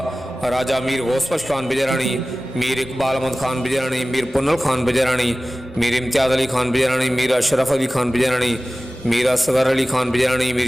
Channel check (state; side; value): normal; both; correlation 0.97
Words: राजा मीर गौसबख्श खान बिजरानी, मीर इकबाल अहमद खान बिजरानी, मीर पुन्नल खान बिजरानी, मीर इम्तियाज़ अली खान बिजरानी, मीर अशरफ अली खान बिजरानी, मीर असगर अली खान बिजरानी,